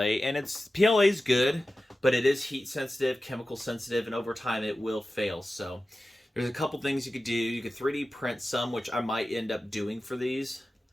and PLA is good, but it is heat sensitive, chemical sensitive, and over time it will fail. So there's a couple things you could do. You could 3D print some, which I might end up doing for these.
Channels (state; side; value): normal; both; correlation 0.94